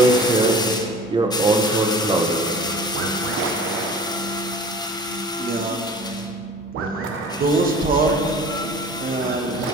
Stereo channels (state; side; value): normal; both; correlation 0.43